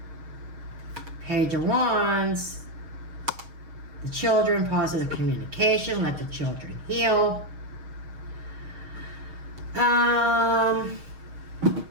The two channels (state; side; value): late; left; 6.4 ms